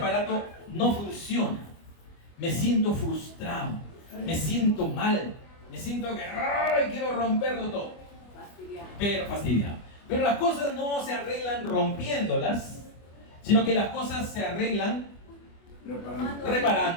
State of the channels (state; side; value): late; right; 25 ms